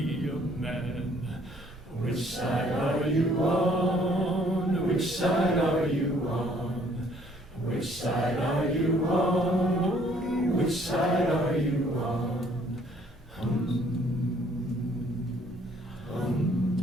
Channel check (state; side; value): normal; both; correlation 0.62